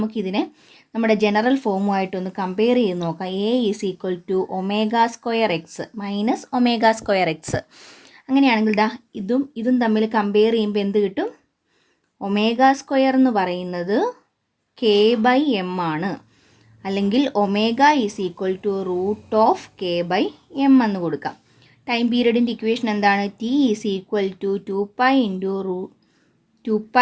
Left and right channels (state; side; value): identical; both; correlation 1.00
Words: നമ്മുടെ ജനറൽ ഫോമുമായിട്ടൊന്ന് കമ്പയർ ചെയ്ത് നോക്കാം. A is equal to ω²x -ω²x. അങ്ങനെയാണെങ്കിൽ ഇതും തമ്മിൽ കമ്പയർ ചെയ്യുമ്പോൾ എന്ത് കിട്ടും? ω² എന്ന് പറയുന്നത് k/m ആണ്, അല്ലെങ്കിൽ omega is equal to √k/m എന്ന് കൊടുക്കാം. ടൈം പീരീഡിൻ്റെ ഇക്വേഷൻ എന്താണ്? T is equal to 2π into